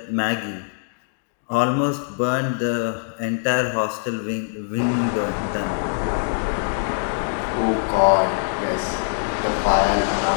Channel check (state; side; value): silent; right; digital silence